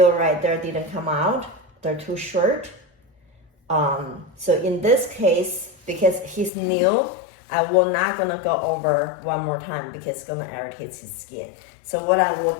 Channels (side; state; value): right; drops out; at 6.5 s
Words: right there. Didn't come out. They're too short. So in this case, because he's new, I will not gonna go over one more time because it's gonna irritate his skin. So what I will